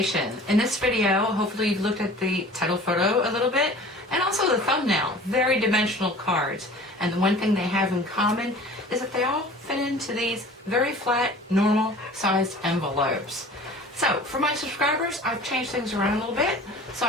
In this video, hopefully you've looked at the title photo a little bit and also the thumbnail. Very dimensional cards. And the one thing they have in common is that they all fit into these very flat, normal sized envelopes. So for my subscribers, I've changed things around a little bit. So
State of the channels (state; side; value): normal; both; correlation 0.44